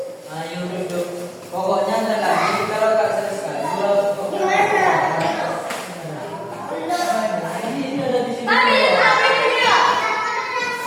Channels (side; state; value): both; identical; correlation 1.00